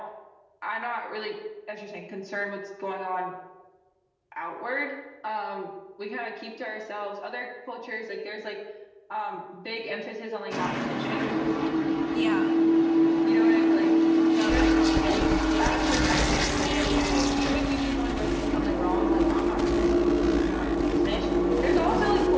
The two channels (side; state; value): both; identical; correlation 1.00